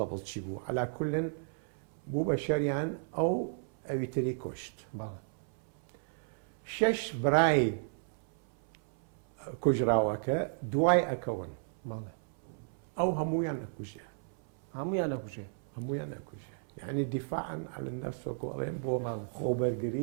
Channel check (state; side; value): silent; left; 55 dB below the other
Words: چی بوو عەلا کولن بوو بە شەریان ئەو ئەویتری کوشت 6 برای کوژراوەکە دوای ئەکەون ئەو هەمویان نەکوژێ هەمویان نەکوژێ یعنی دیفاعن على النفس وەڵێن بۆ